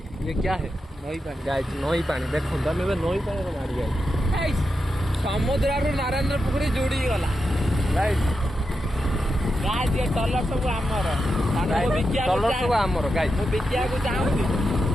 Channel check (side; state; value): both; normal; correlation 0.88